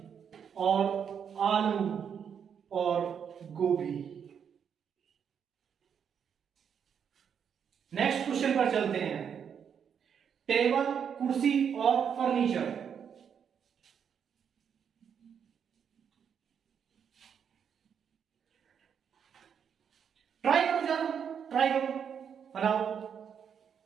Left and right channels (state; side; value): quieter; left; 7.6 dB